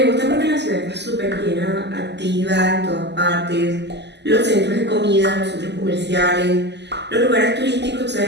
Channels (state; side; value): late; left; 0.50 ms